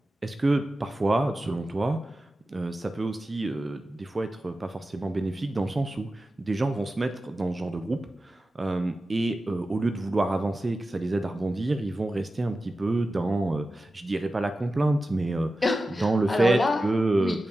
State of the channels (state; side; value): normal; both; correlation 0.94